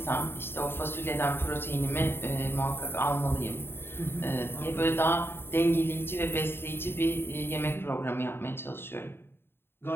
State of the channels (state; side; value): late; right; 0.11 ms